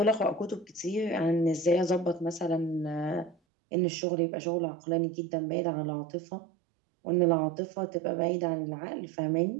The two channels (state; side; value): drops out; left; at 3.4 s